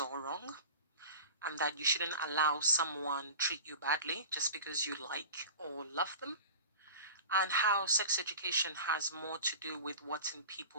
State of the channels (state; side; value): inverted; both; correlation -0.34